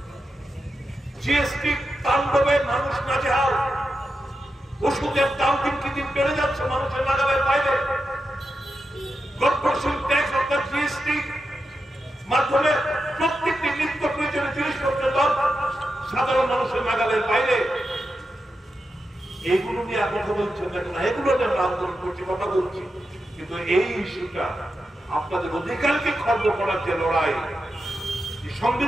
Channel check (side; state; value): both; normal; correlation 0.89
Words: জিএসটি তাণ্ডবে মানুষ নাজেহাল, ওষুধের দাম দিন কি দিন বেড়ে যাচ্ছে মানুষের নাগালের বাইরে, কর্পোরেশন ট্যাক্স অর্থাৎ জিএসটি মাধ্যমে প্রত্যেকটি নিত্য প্রয়োজনীয় জিনিসপত্রের দাম সাধারণ মানুষের নাগালের বাইরে। এইগুলো নিয়ে কথা বলছেন না, এগুলো নিয়ে আমরা আন্দোলন করছি, কথা বলছি, কিন্তু এই ইস্যুটা আপনাদের অধিকারকে খর্ব করার যে লড়াই,